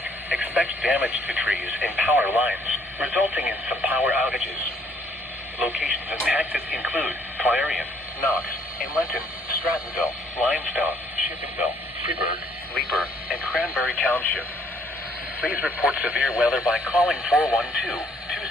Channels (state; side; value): normal; both; correlation 0.65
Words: expect damage to trees and power lines, resulting in some power outages. Locations impacted include Clarion, Knox, Inleton, Strattonville, Limestone, Shippingville, Freeburg, Leeper, and Cranberry Township. Please report severe weather by calling